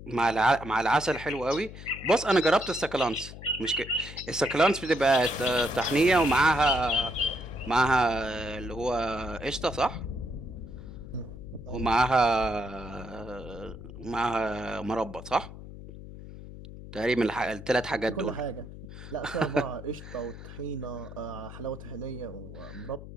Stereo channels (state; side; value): noise; left; hum, 13 dB below the sound